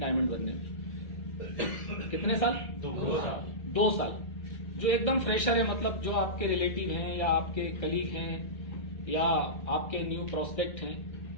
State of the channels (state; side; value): late; right; 1.6 ms